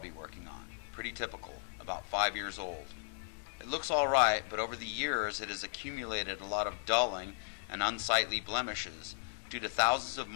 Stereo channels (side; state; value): right; silent; digital silence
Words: working on. Pretty typical, about 5 years old. It looks alright, but over the years it has accumulated a lot of dulling and unsightly blemishes due to thousands of